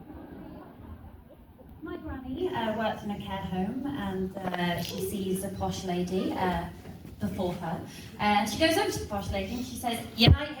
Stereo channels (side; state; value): both; identical; correlation 1.00